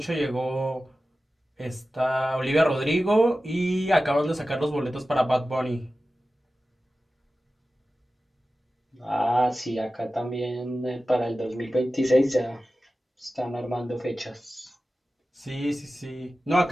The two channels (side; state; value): both; normal; correlation 0.94